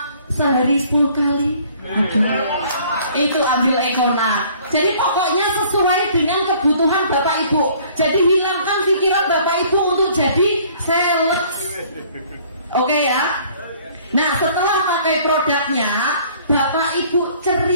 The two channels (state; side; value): inverted; both; correlation -0.56